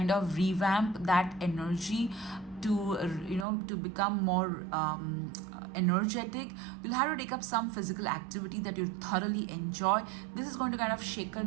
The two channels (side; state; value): left; drops out; at 3.5 s